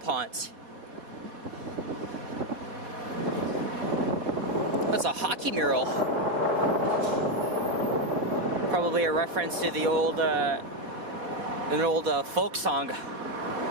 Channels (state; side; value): late; left; 4.1 ms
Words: That's a hockey mural. Probably a reference to the old, an old folk song.